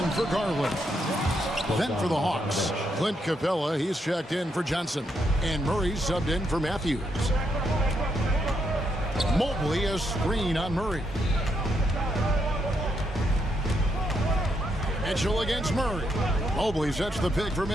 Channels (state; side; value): normal; both; correlation 0.79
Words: for Garland. Then for the Hawks, Clint Capella, he's checked in for Johnson. And Murray subbed in for Matthews. Mobley, a screen on Murray. Mitchell against Murray. Mobley sets the pick for